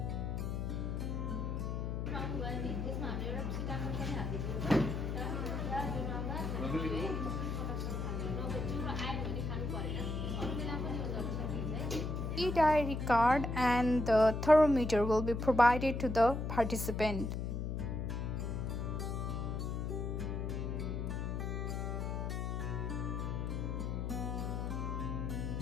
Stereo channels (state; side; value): noise; left; hum, 2 dB below the sound